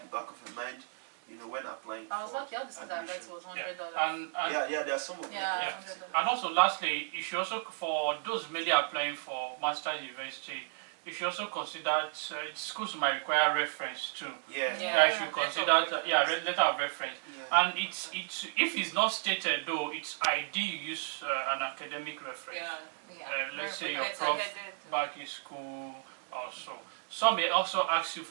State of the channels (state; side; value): silent; left; digital silence